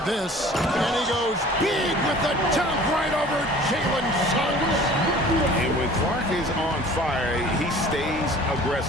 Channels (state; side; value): normal; both; correlation 0.47